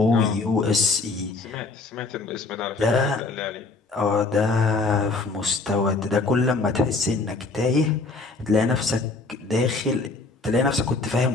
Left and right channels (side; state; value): right; quieter; 3.6 dB